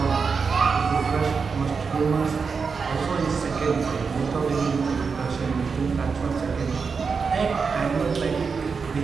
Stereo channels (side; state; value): left; quieter; 5.3 dB